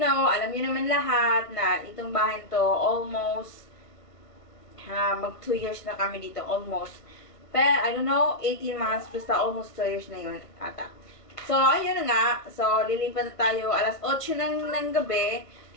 know, alam niyo naman lahat na itong bahay to almost mag 2 years na kami dito, almost. Pero, I don't know, 18 months, basta almost 2 years na yun, ata. So, ayun na nga. So, lilipat na tayo alas 8 ng gabi.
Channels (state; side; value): late; right; 1.5 ms